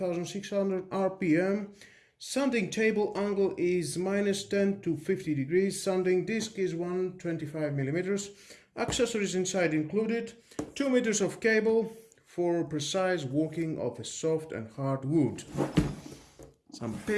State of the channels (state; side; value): identical; both; correlation 1.00